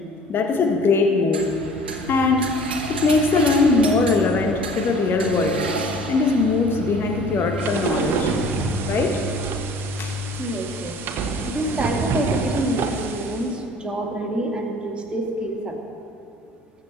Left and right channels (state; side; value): normal; both; correlation 0.49